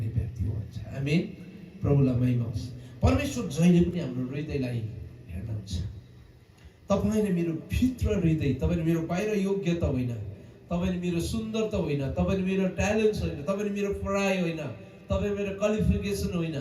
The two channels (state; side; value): identical; both; correlation 1.00